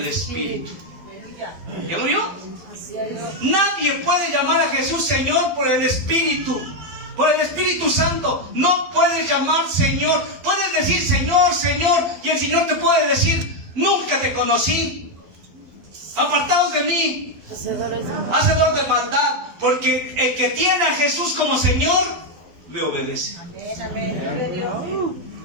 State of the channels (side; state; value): left; late; 12 ms